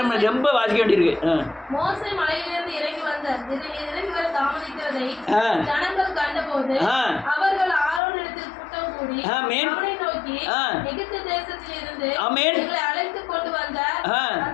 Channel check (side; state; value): right; drops out; at 8.0 s